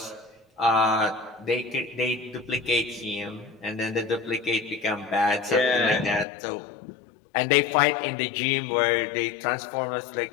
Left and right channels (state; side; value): drops out; right; at 6.2 s